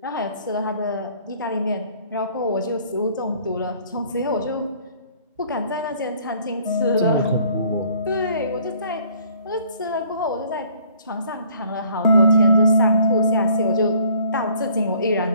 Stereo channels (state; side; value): inverted; both; correlation -0.58